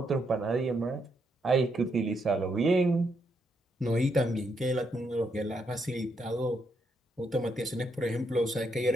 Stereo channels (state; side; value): normal; both; correlation 0.78